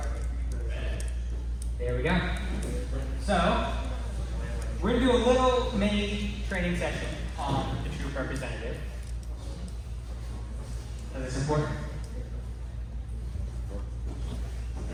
There we go. So, we're going to do a little mini training session on the troop representative. So that's important.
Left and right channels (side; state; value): both; identical; correlation 1.00